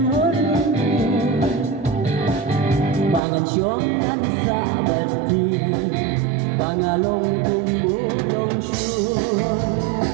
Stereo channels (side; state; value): left; drops out; at 3.2 s